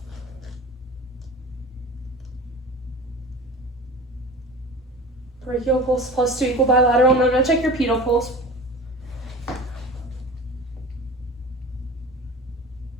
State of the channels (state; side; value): normal; both; correlation 0.36